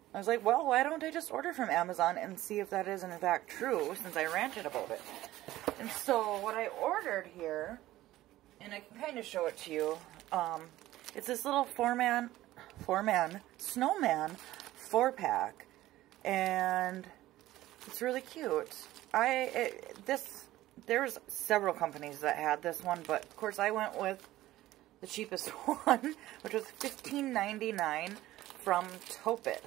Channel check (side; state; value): left; quieter; 15.6 dB